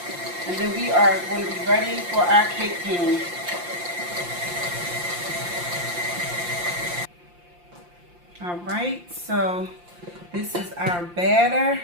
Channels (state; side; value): late; left; 5.7 ms